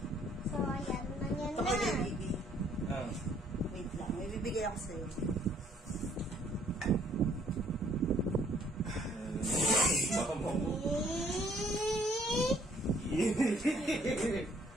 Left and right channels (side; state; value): both; normal; correlation 0.63